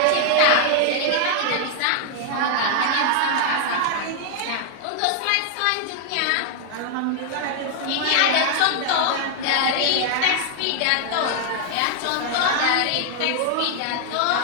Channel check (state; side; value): different; both; correlation 0.00